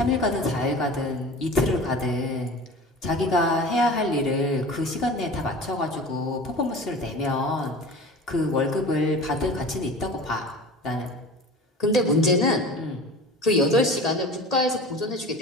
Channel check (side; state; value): both; normal; correlation 0.37